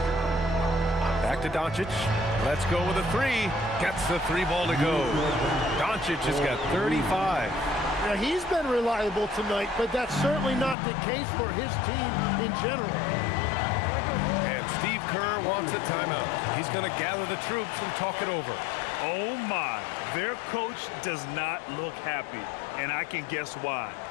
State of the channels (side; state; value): right; drops out; at 10.8 s